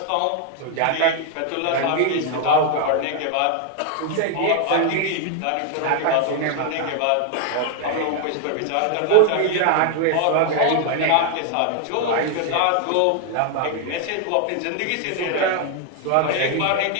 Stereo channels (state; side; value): different; both; correlation 0.00